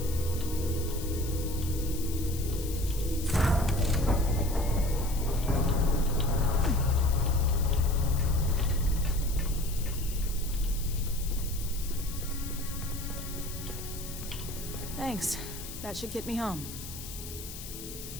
Thanks. That should get me home.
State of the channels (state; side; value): noise; left; hiss, 11 dB below the sound